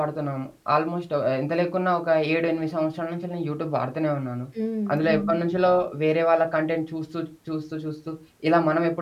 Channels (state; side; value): identical; both; correlation 1.00